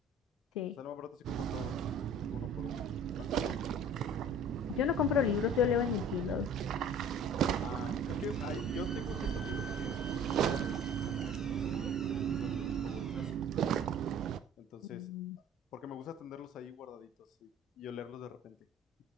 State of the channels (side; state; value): both; normal; correlation 0.46